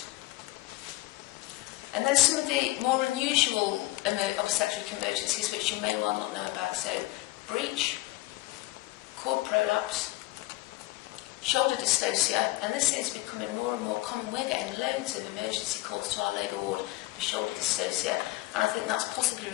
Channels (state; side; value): quieter; right; 19.2 dB